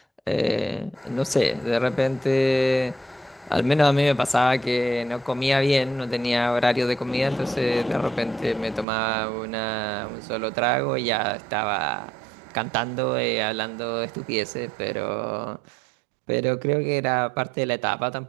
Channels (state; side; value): drops out; left; at 8.8 s